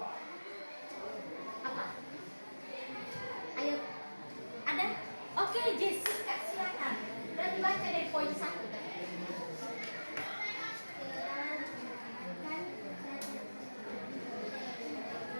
Apa? Ayo. Ada? Oke, Jessica, silakan. Berarti baca dari poin 1 tadi.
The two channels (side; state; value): both; inverted; correlation -1.00